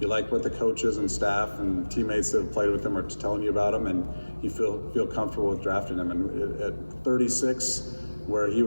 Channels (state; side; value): inverted; both; correlation -1.00